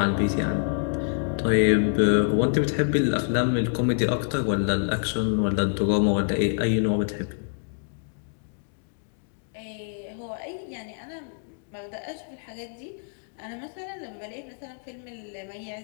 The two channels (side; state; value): right; silent; digital silence